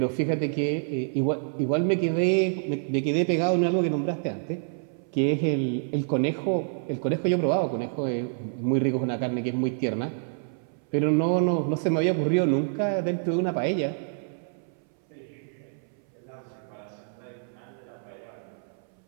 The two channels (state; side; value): silent; left; 60 dB below the other